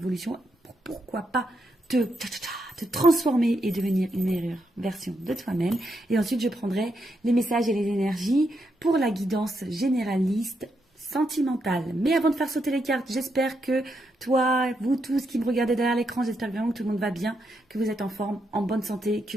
pour pourquoi pas te transformer et devenir une meilleure version de toi-même. Et ensuite, je prendrai les messages et les énergies pour la guidance généraliste sentimentale. Mais avant de faire sauter les cartes, j'espère que toi, vous tous qui me regardez derrière l'écran, j'espère vraiment que tout le monde va bien, que vous êtes en forme, en bonne santé,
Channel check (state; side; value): normal; both; correlation 0.81